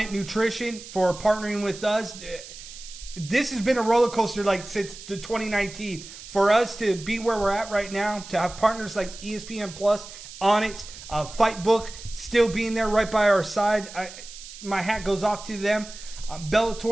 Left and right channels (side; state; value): right; noise; hiss, 15 dB below the sound